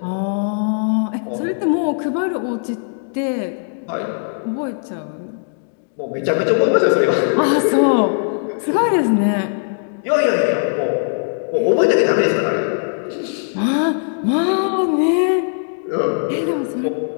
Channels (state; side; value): silent; right; digital silence